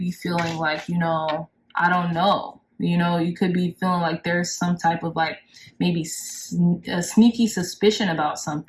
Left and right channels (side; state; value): both; identical; correlation 1.00